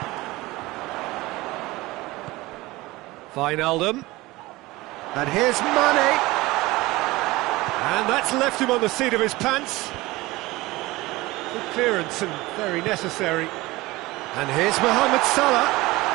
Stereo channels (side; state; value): left; quieter; 20.1 dB